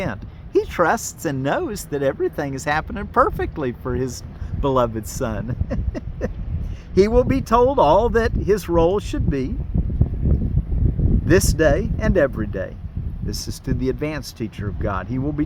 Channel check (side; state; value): both; identical; correlation 1.00